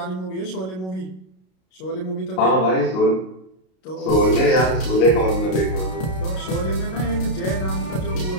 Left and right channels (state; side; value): late; right; 32 ms